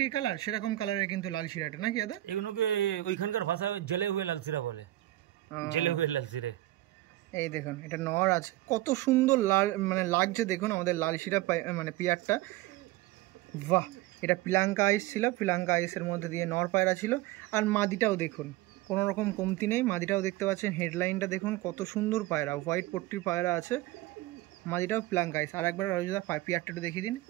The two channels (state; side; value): quieter; left; 16.5 dB